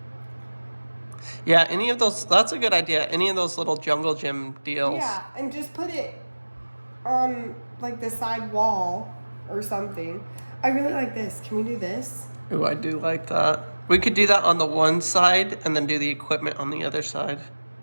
Yeah, any of those, that's a good idea. Any of those little jungle gym deals. Yeah, and just put it on like the side wall or something. I really like this. Can we do this? Ooh, I do like that. We could do that on the one side and then do the equipment on the other side.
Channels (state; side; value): inverted; both; correlation -1.00